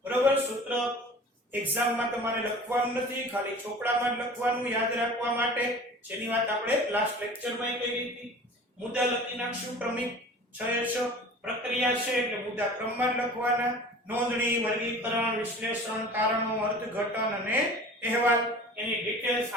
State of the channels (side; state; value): both; normal; correlation 0.41